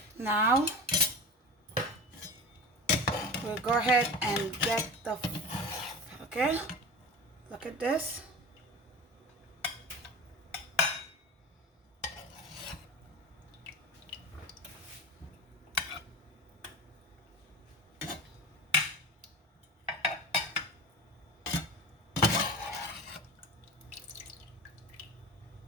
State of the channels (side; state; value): both; normal; correlation 0.31